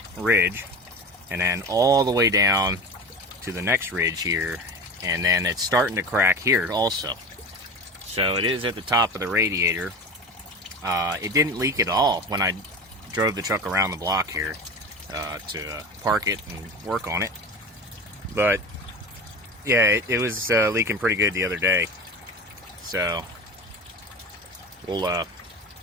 ridge and then all the way down to the next ridge here, and then it's starting to crack here also. So it is at the top of the radiator. It didn't leak at all when I drove the truck around the block here to park it and work on it, but yeah, it was leaking pretty good the other day. So we'll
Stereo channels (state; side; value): normal; both; correlation 0.30